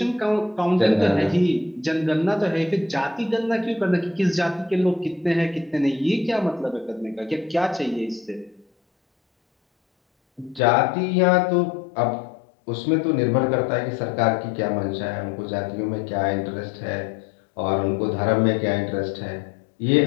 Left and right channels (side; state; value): right; drops out; at 10.6 s